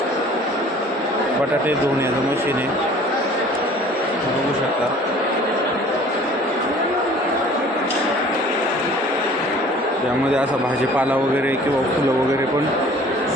बटाटे धुण्याचं मशीन आहे, बघू शकता. त्यामध्ये असा भाजीपाला वगैरे किंवा फुलं वगैरे पण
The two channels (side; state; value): both; normal; correlation 0.50